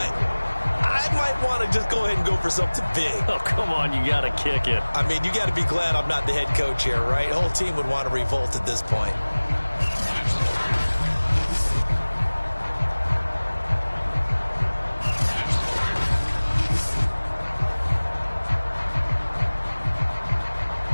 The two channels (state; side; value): inverted; both; correlation -1.00